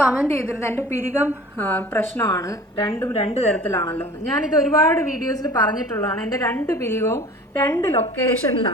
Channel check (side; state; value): both; normal; correlation 0.44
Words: കമൻറ്റ് ചെയ്തിരുന്നത് എൻ്റെ പിരികം പ്രശ്നമാണ്, രണ്ടും 2 തരത്തിലാണല്ലോ. ഞാനിത് ഒരുപാട് വീഡിയോസിൽ പറഞ്ഞിട്ടുള്ളതാണ്. എൻ്റെ 2 പിരികവും 2